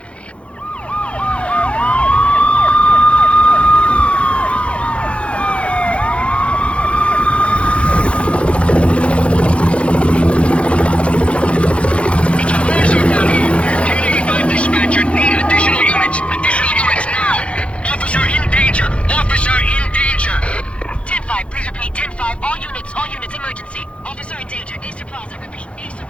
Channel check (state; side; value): late; right; 0.060 ms